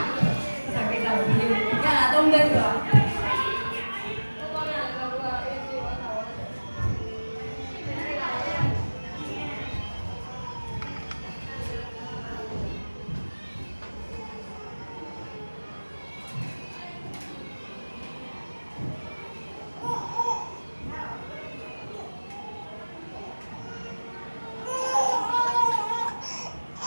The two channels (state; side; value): inverted; both; correlation -1.00